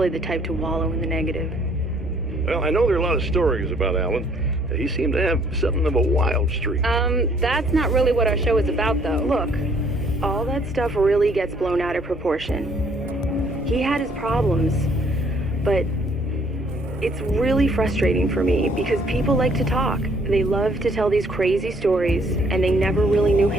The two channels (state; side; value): normal; both; correlation 0.62